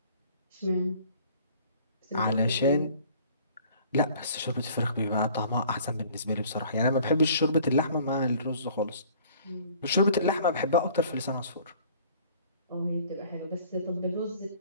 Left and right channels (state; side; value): inverted; both; correlation -0.53